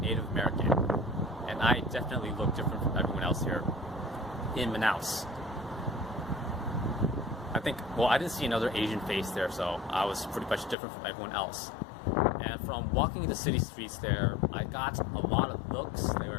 Native American. And I definitely look different from everyone else here in Manaus. I didn't see another Asian face there, so I was pretty much different from everyone else. And from walking the city streets there, I got a lot of looks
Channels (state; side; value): drops out; right; at 10.8 s